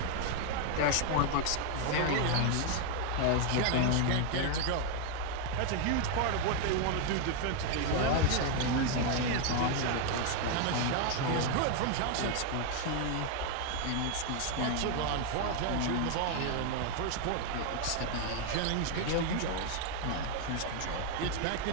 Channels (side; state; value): both; different; correlation 0.00